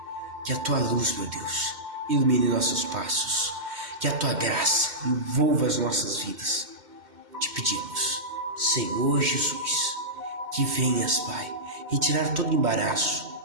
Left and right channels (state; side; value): late; left; 2.1 ms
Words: Que a tua luz, meu Deus, ilumine nossos passos. Que a tua graça envolva as nossas vidas. Te pedimos, Senhor Jesus, que venhas, Pai, retirar todo embaraço,